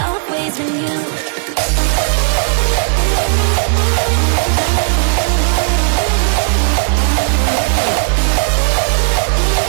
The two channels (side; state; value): left; silent; digital silence